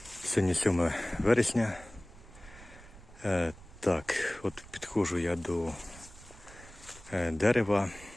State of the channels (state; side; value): noise; right; rumble, 19 dB below the sound